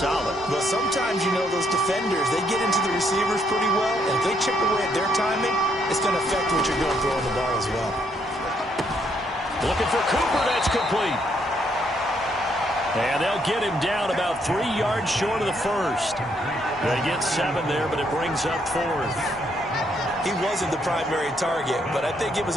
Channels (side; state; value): both; normal; correlation 0.73